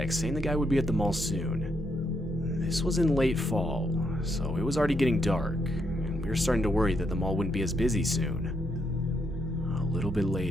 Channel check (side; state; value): both; normal; correlation 0.78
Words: saying the guy would be at the mall soon. This was in late fall, so it was already getting dark, and we were starting to worry that the mall wouldn't be as busy soon. A little bit